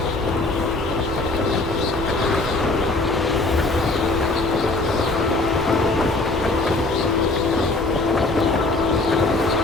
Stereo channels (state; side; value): quieter; right; 3.1 dB